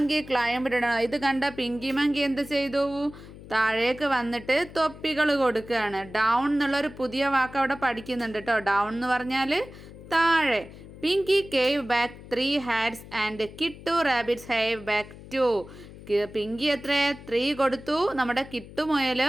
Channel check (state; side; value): noise; left; hum, 17 dB below the sound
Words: climbed down. ഇത് കണ്ട പിങ്കി മങ്കി എന്ത് ചെയ്തു? താഴേക്ക് വന്നിട്ട് തൊപ്പികൾ കൊടുക്കുകയാണ്. ഡൗൺ എന്നുള്ളൊരു പുതിയ വാക്ക് അവിടെ പഠിക്കുന്നുണ്ട് കേട്ടോ. ഡൗൺ എന്ന് പറഞ്ഞാൽ താഴെ. Pinky gave back 3 hats and കിട്ടു റാബിറ്റ്സ് ഹാവ് ബാക്ക് 2. പിങ്കി എത്ര? 3 കൊടുത്തു. നമ്മുടെ കിട്ടു മുയൽ